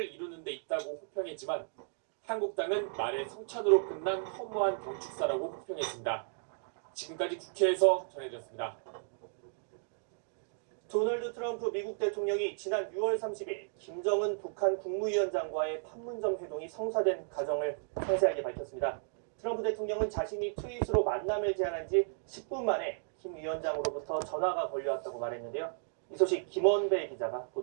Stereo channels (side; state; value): left; silent; digital silence